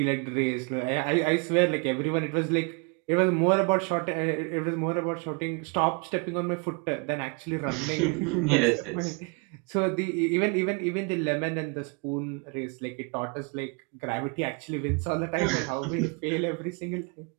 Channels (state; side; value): quieter; left; 32.4 dB